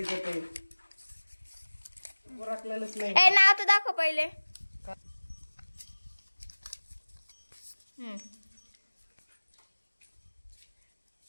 आहे ओळखलेलंच नाही. नाव तर दाखव पहिले.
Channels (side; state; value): both; inverted; correlation -1.00